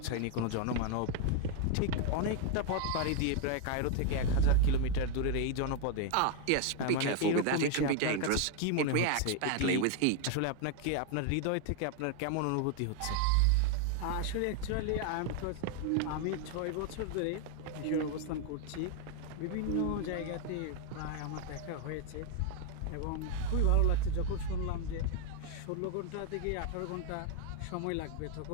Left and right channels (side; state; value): both; different; correlation 0.00